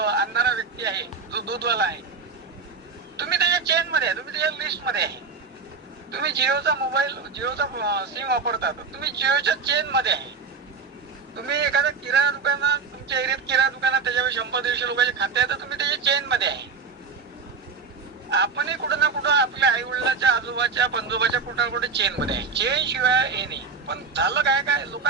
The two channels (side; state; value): left; quieter; 5.0 dB